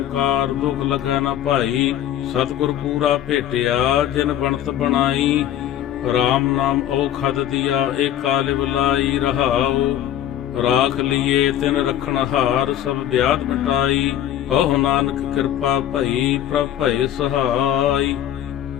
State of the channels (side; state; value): right; quieter; 11.3 dB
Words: ਕਾਰ ਦੁਖ ਲਗੈ ਨ ਭਾਈ। ਸਤਿਗੁਰ ਪੂਰਾ ਭੇਟਿਆ ਜਿਨ ਬਣਤ ਬਣਾਈ। RAM ਨਾਮ ਔਖਦ ਦੀਆ ਏਕ ਕਾਲ ਬੁਲਾਈ ਰਹਾਉ। ਰਾਖ ਲੀਏ ਤਿਨ ਰਖਣ ਹਾਰ ਸਭ ਵਿਆਧ ਮਿਟਾਈ। ਕਹੋ ਨਾਨਕ ਕਿਰਪਾ ਭਈ ਪ੍ਰਭ ਭਏ ਸਹਾਈ।